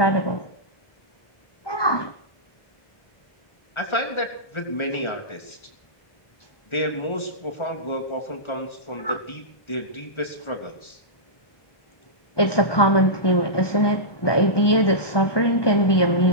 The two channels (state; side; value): late; right; 1.4 ms